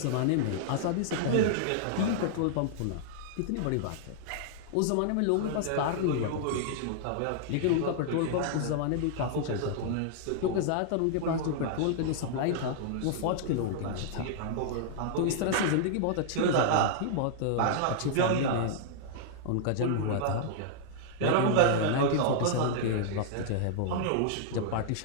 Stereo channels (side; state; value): both; different; correlation -0.01